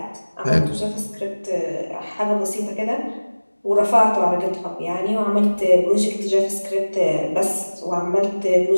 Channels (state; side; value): inverted; both; correlation -1.00